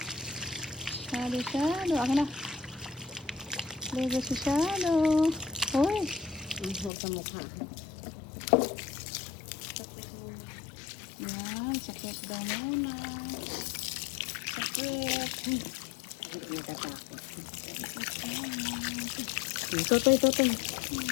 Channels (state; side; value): drops out; right; at 6.9 s